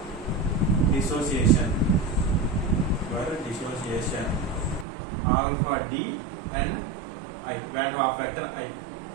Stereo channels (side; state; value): left; drops out; at 4.9 s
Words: dissociation alpha D and I, van der Waals factor I,